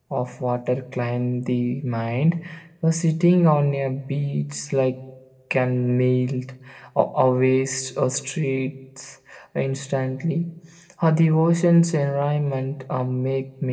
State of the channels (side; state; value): both; identical; correlation 1.00